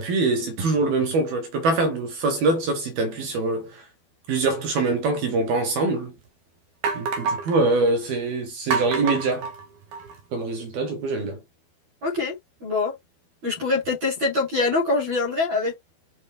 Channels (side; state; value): left; late; 12 ms